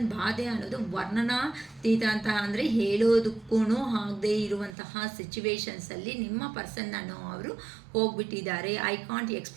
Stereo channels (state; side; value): drops out; left; at 4.8 s